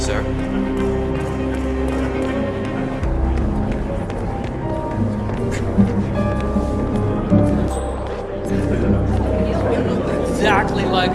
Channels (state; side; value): identical; both; correlation 1.00